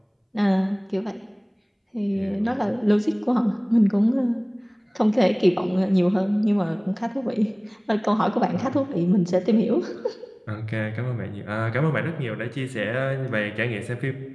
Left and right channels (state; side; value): identical; both; correlation 1.00